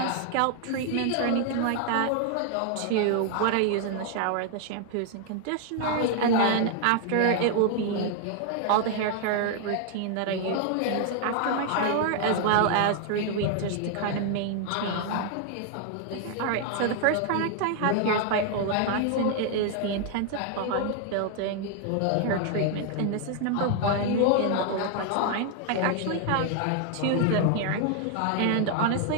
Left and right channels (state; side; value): different; both; correlation 0.00